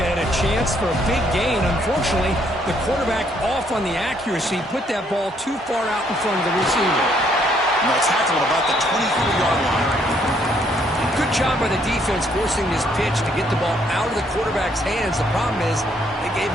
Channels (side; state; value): both; normal; correlation 0.69